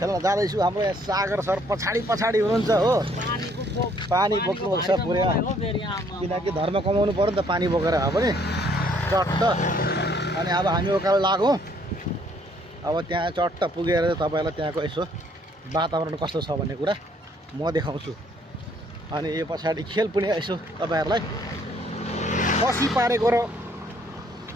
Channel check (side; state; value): both; normal; correlation 0.64